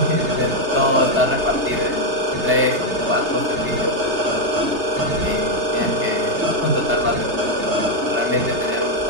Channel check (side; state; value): left; late; 3.3 ms